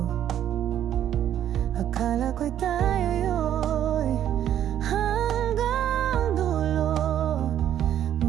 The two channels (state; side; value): quieter; left; 10.6 dB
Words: Akala ko'y tayo'y hanggang dulo,